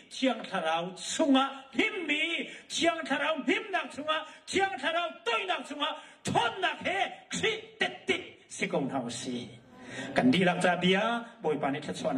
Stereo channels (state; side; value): identical; both; correlation 1.00